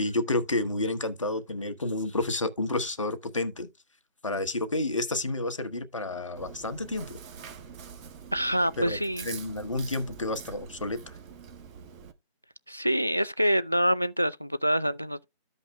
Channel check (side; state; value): both; inverted; correlation -0.70